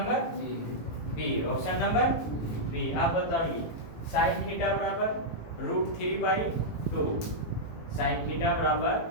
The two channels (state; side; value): late; right; 18 ms